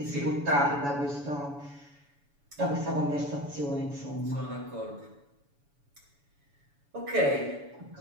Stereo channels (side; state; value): left; late; 7.0 ms